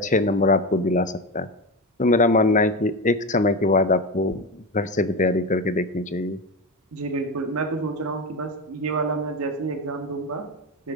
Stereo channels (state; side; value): normal; both; correlation 0.19